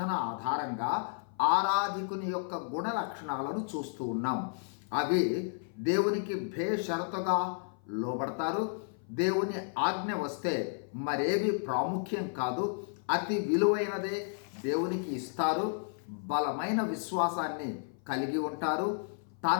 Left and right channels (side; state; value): right; silent; 55 dB below the other